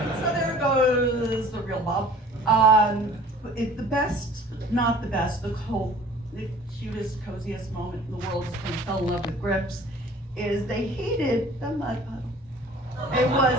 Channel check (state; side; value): normal; both; correlation 0.49